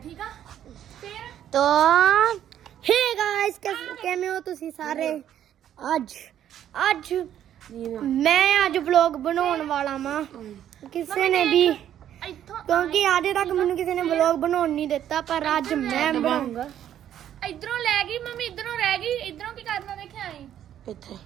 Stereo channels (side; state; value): left; quieter; 10.7 dB